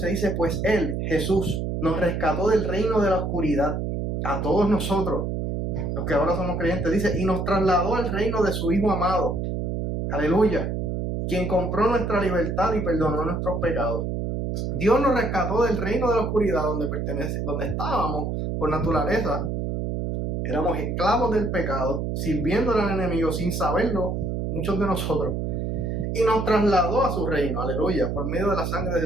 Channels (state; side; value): noise; right; hum, 2 dB below the sound